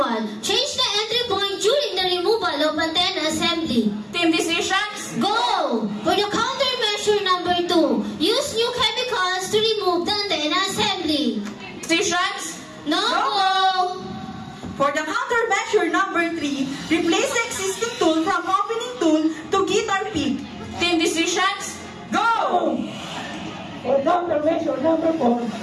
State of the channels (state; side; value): identical; both; correlation 1.00